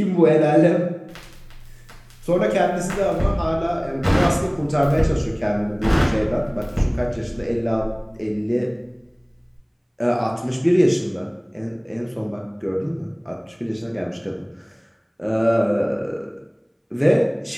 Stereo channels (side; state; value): both; identical; correlation 1.00